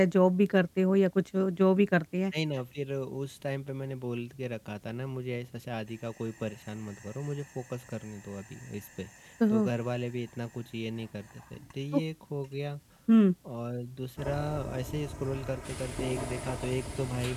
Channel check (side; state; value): both; identical; correlation 1.00